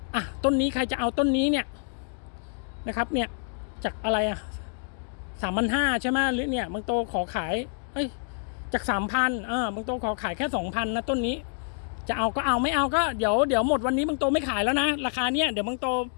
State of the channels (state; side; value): silent; right; 60 dB below the other